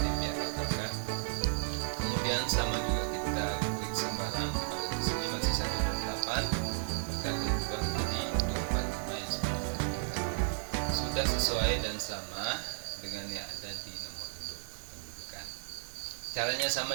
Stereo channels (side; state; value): left; silent; digital silence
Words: atau KK. Kemudian sama juga kita klik sembarang. Kalau di sini masih 128, maka akan berubah menjadi 245 yang sudah kita ubah tadi. Sudah sesuai dan sama dengan yang ada di nomor induk kependudukan. Caranya sama